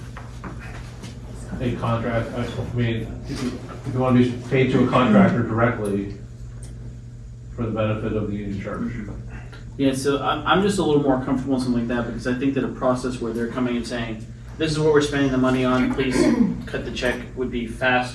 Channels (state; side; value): identical; both; correlation 1.00